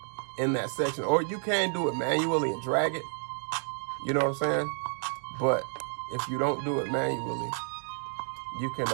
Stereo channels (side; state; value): left; silent; 58 dB below the other